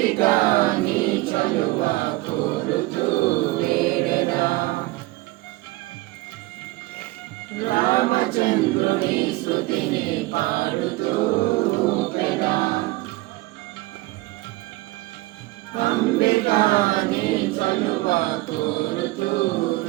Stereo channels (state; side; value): quieter; left; 20.2 dB